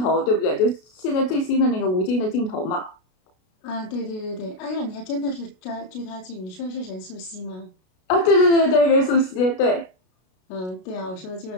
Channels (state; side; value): late; right; 32 ms